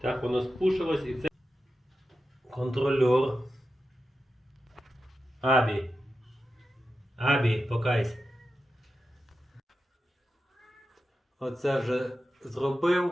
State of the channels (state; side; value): normal; both; correlation 0.91